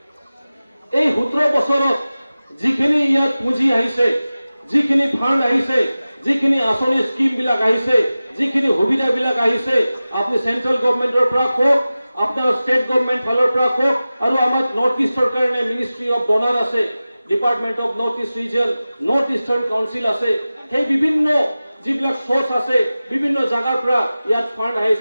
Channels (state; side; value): inverted; both; correlation -0.96